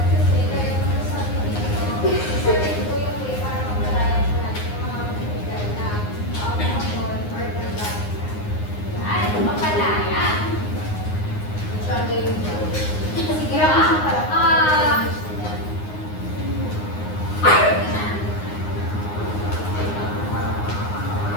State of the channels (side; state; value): right; late; 9.7 ms